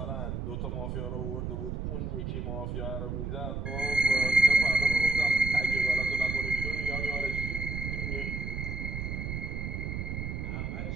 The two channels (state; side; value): noise; right; rumble, 4 dB below the sound